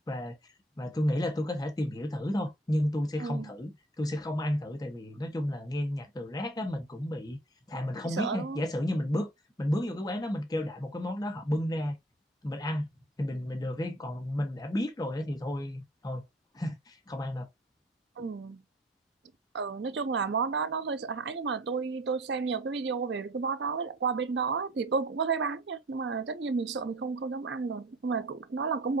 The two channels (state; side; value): normal; both; correlation 0.52